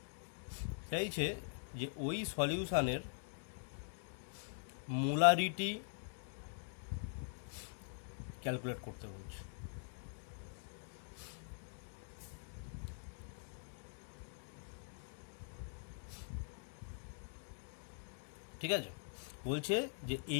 চাইছে যে ওই সলিউশনের মোলারিটি ক্যালকুলেট করতে বলছে। ঠিক আছে, বলছে যে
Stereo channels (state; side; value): silent; right; digital silence